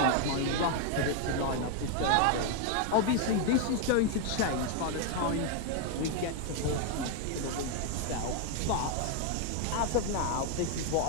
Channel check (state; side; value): different; both; correlation 0.01